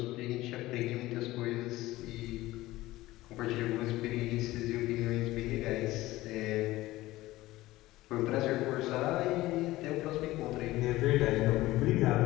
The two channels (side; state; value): right; quieter; 17.5 dB